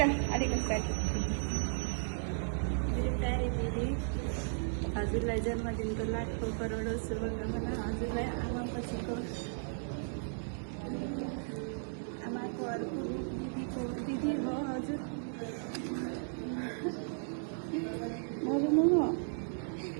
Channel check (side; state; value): left; silent; digital silence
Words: अलिकति। मेरो प्यारी दिदी, हजुरलाई जन्मदिनको लाखौँ करोडौँ शुभकामना। हजुरलाई आमापछिको आमाको अर्को दिदीको दिदी हो हजुर।